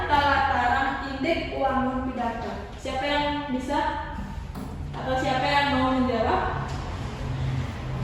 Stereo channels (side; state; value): both; identical; correlation 1.00